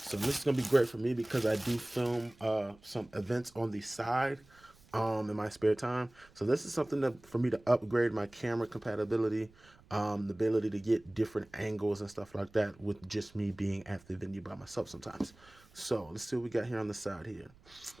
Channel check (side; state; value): right; noise; rumble, 27 dB below the sound